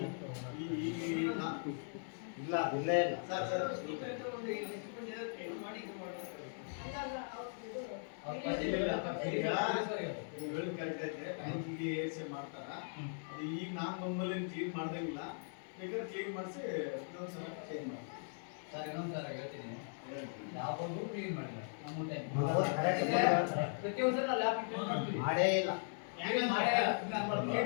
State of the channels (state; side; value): silent; right; 52 dB below the other